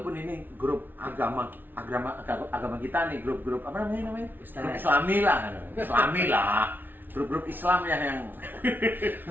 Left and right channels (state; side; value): late; left; 0.092 ms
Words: ini grup agama kita nih, grup apa namanya? Islami lah, grup Islam ya yang